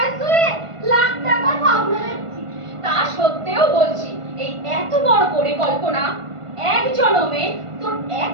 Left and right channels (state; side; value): late; left; 1.5 ms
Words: শুয়ে লাখ টাকা সামলাচ্ছি। তা সত্ত্বেও বলছি, এই এত বড় পরিকল্পনা এক জনমে তোর